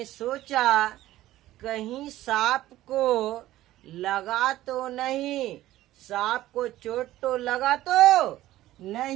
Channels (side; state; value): left; quieter; 15.1 dB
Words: सोचा कहीं सांप को लगा तो नहीं, सांप को चोट तो लगा तो